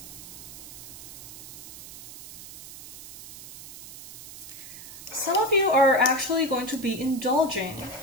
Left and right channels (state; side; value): noise; right; hiss, 14 dB below the sound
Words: Some of you are actually going to be indulging